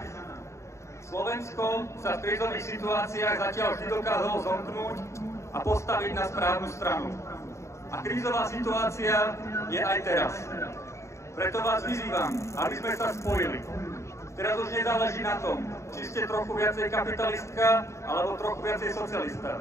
Slovensko sa v krízových situáciách zatiaľ vždy dokázalo zomknúť a postaviť na správnu stranu. A krízová situácia je aj teraz. Preto vás vyzývam, aby sme sa spojili. Teraz už nezáleží na tom, či ste trochu viacej kapitalistka, alebo trochu viacej socialista.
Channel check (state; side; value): late; right; 0.14 ms